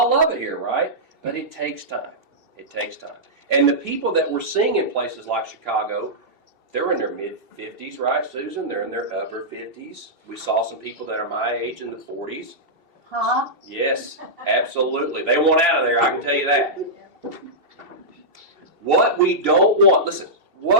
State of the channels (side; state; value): left; late; 2.7 ms